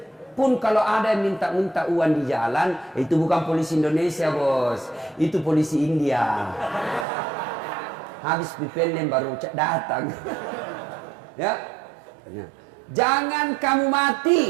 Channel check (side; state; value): left; drops out; at 7.1 s